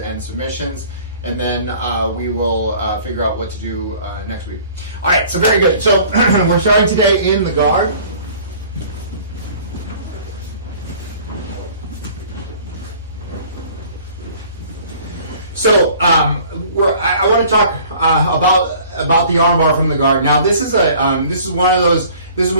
submissions, and then we will figure out what to do next week. All right, so very good. So we're starting today in the guard. So I want to talk about the armbar from the guard. Now this is one of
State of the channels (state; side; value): inverted; both; correlation -0.50